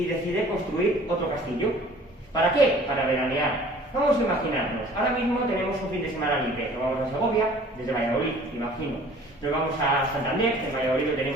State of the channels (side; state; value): both; normal; correlation 0.50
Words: decide construir otro castillo. ¿Para qué? Para veranear. Vamos a imaginarnos, ahora mismo tenemos un fin de semana libre, nos vamos a Segovia, desde Valladolid, imagino. Nos vamos a Santander, que en Valladolid lo